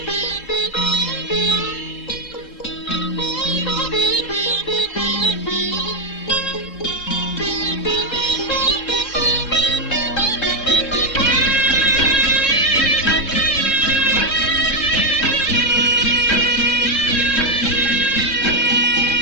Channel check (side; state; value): right; late; 3.6 ms